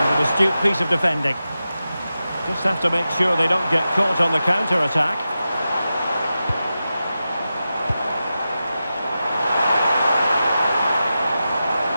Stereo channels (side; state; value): both; inverted; correlation -0.92